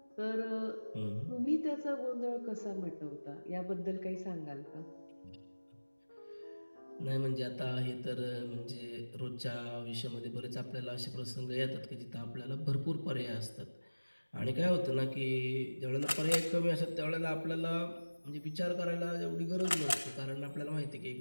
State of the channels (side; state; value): both; inverted; correlation -1.00